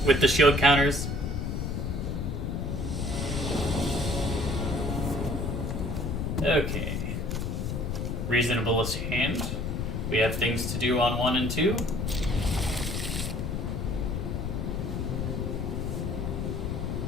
with the shield counters. Okay. Reasonablest hand. We have things to do on 1 and 2.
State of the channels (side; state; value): left; noise; rumble, 2 dB below the sound